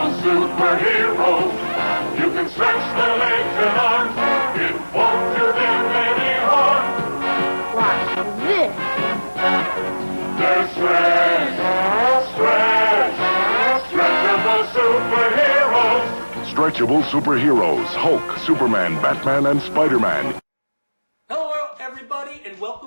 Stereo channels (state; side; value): inverted; both; correlation -1.00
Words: superheroes. You can stretch their legs and arms. It won't do them any harm. Watch this. They're stretchable superheroes. Stretchable superheroes, Hulk, Superman, Batman, and Spider-Man. Hello everybody and